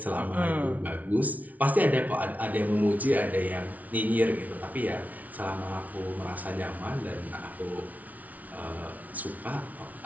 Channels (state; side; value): late; left; 0.073 ms